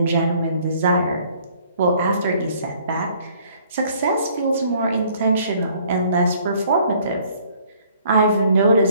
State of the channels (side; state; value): both; inverted; correlation -0.60